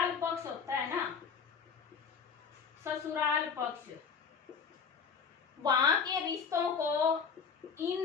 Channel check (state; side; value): quieter; right; 6.2 dB